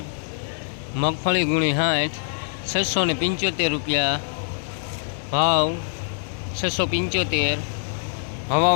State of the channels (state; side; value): silent; right; 63 dB below the other